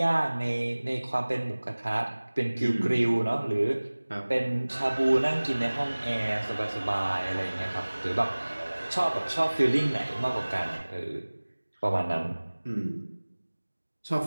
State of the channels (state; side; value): inverted; both; correlation -1.00